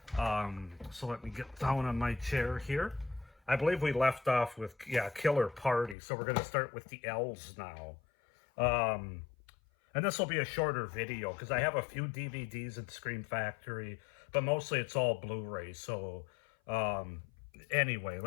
So let me get down on my chair here. I believe we left off with, Killer Party. So we're going to start with the L's now. And this will be a shorter video because I have a few DVDs in Scream Factory, but mostly it's all Blu-rays. So anyway,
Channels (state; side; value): drops out; right; at 6.0 s